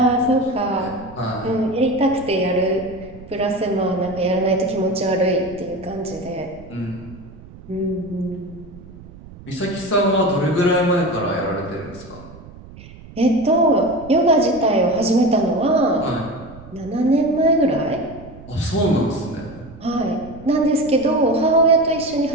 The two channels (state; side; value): noise; right; rumble, 19 dB below the sound